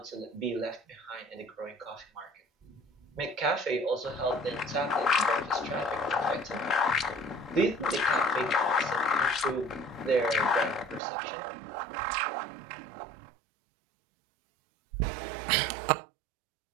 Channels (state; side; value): drops out; left; at 11.0 s